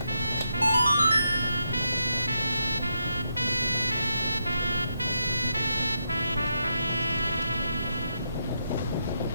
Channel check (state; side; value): inverted; both; correlation -0.82